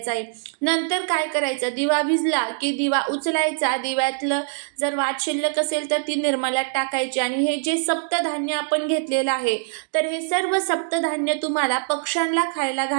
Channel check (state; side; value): silent; left; digital silence